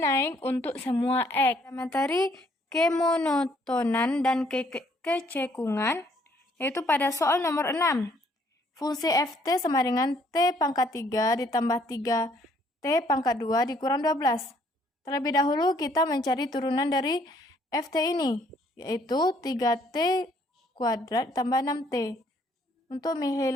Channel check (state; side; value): normal; both; correlation 0.65